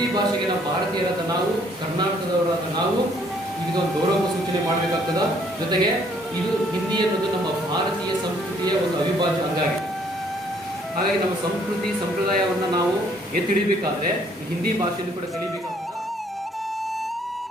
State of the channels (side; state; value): both; normal; correlation 0.64